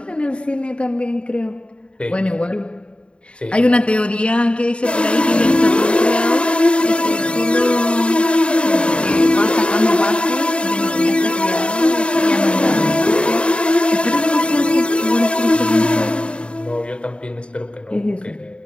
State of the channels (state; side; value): late; right; 0.056 ms